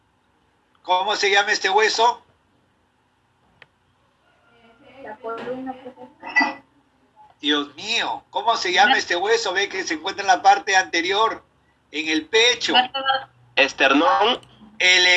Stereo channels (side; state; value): both; identical; correlation 1.00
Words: ¿Cómo se llama este hueso? la columna. Dios mío, ¿cómo se llama este hueso? Ve que se encuentra en la parte anterior, en el pecho. Esternón. El